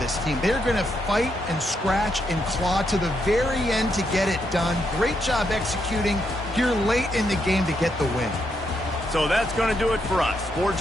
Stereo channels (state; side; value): normal; both; correlation 0.79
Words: this team. They're going to fight and scratch and claw to the very end to get it done. Great job executing here late in the game to get the win. So that's going to do it for us. For